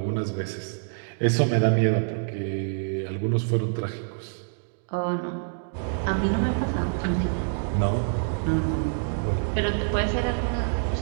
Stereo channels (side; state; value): left; silent; digital silence